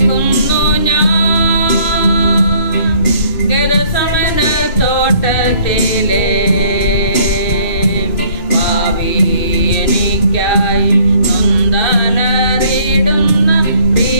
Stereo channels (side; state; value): right; late; 2.6 ms